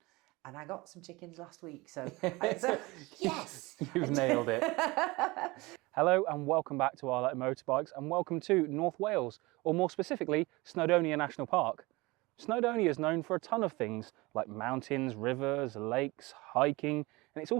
and I got some chickens last week, so yes! You've nailed it. Hello and welcome back to Our Letter Motorbikes and welcome to North Wales, or more specifically, Snowdonia National Park. Snowdonia is known for a ton of things like mountains, rivers, lakes, hiking, and it's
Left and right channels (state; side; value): quieter; left; 22.9 dB